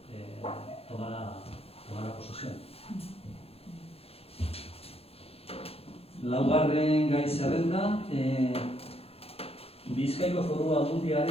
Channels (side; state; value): right; late; 0.29 ms